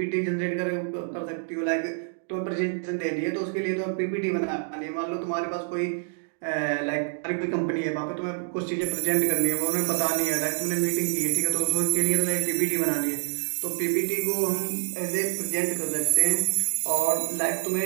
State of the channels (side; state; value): left; silent; digital silence